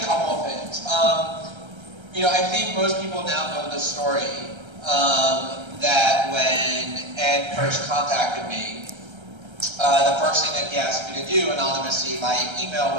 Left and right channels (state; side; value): late; left; 1.3 ms